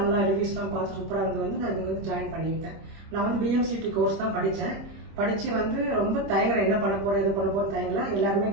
ரிவ்யூஸ்லாம் பார்த்து சூப்பராக இருந்து வந்து நான் இங்கே வந்து ஜாயின் பண்ணிக்கிட்டேன். நான் வந்து பிஎம்சிடி கோர்ஸ் தான் படித்தேன். படித்து வந்து ரொம்ப தயங்கலை, என்ன பண்ண போகிறேன் எது பண்ண போகிறேன் தயங்கலை. எல்லாருமே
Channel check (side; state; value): left; late; 25 ms